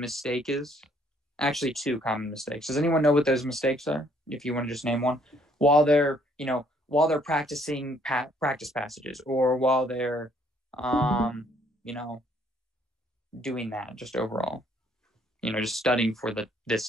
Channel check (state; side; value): normal; both; correlation 0.65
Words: is? Actually, two common mistakes. Does anyone know what those mistakes are? If you want to just name one, while they're practicing practice passages, or while they're doing that, just overall, just studying for this